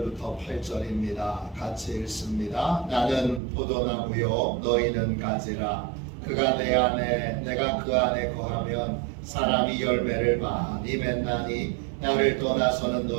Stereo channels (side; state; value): left; drops out; at 3.4 s